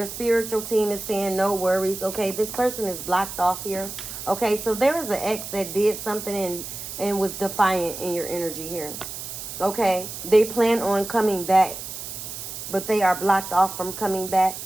spiritual team is saying no worries, okay? This person is blocked off here, okay? So there is an X that did something and was defiant in your energy here, okay? They plan on coming back, but they are blocked off from coming back,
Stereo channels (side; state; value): right; noise; hiss, 9 dB below the sound